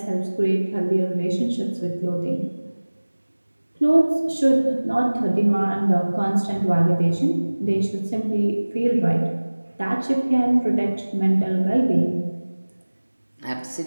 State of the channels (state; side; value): inverted; both; correlation -1.00